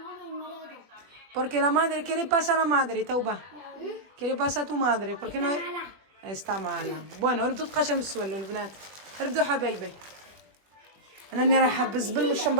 Porque la madre, ¿qué le pasa a la madre, توبة؟ ¿Qué le pasa a tu madre? Porque no está mala. Bueno, ردوا تقاشم السوالو البنات. ردوا حبايبي. أنا راني رايحة بالزبل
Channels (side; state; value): left; late; 21 ms